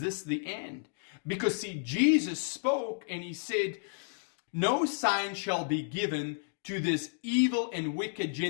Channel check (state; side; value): silent; right; digital silence